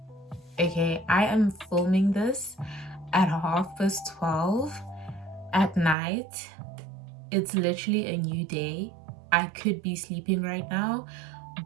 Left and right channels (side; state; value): left; drops out; at 6.0 s